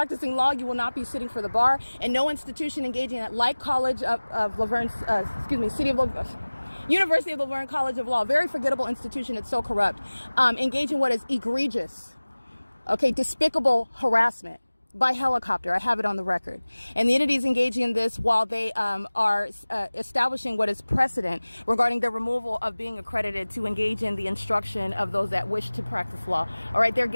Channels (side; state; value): both; inverted; correlation -1.00